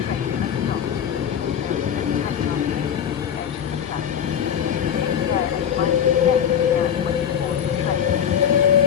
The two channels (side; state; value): right; quieter; 8.6 dB